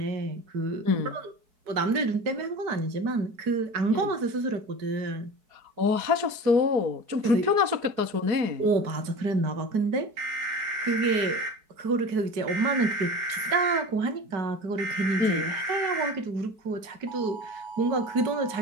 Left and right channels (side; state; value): left; late; 4.6 ms